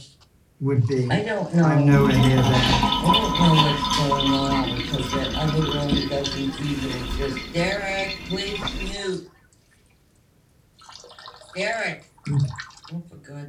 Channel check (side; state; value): both; identical; correlation 1.00